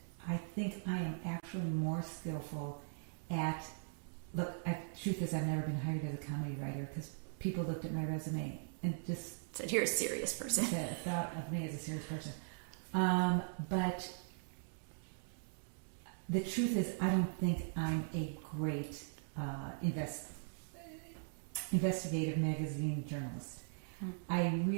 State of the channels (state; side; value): silent; left; digital silence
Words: I think I am actually more skillful at... truth is, I've never been hired as a comedy writer because people looked at my resume and just... said, you're a serious person. thought of me as a serious person. But the truth is, I don't think I'm a great investigative magazine journalist. I